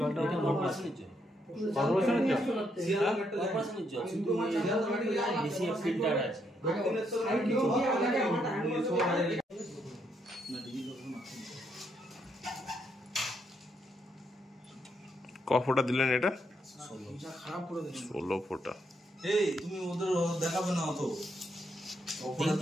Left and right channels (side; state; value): both; normal; correlation 0.76